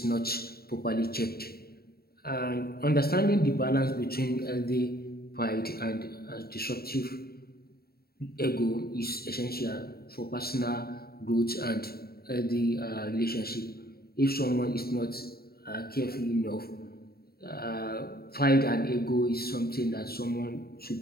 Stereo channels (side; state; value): right; late; 0.45 ms